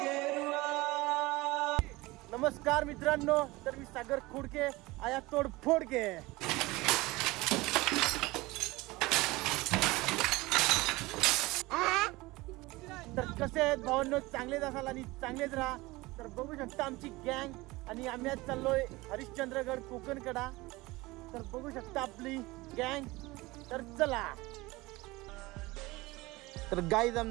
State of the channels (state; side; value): quieter; left; 21.2 dB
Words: नमस्कार मित्रांनो, तर मी सागर खोडके आया तोडफोड के। तर कसे आहेत भावांनो, चांगलेच असाल आणि चांगलेच राहा। तर बघू शकता आमची गँग आणि आम्ही आज चाललोय हरिश्चंद्रगड कोकणकडा। तर बघू शकता आपली गँग। तर चला। तर गाईज